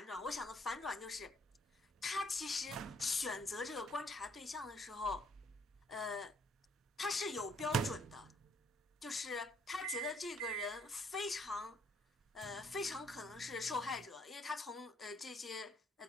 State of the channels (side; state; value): both; normal; correlation 0.66